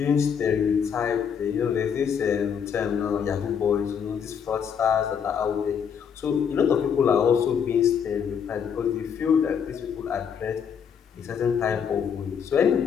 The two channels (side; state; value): right; quieter; 7.4 dB